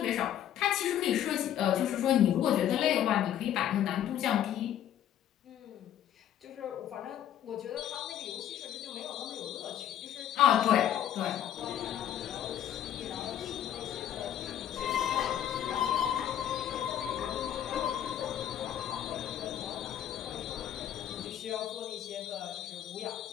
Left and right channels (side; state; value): right; quieter; 10.8 dB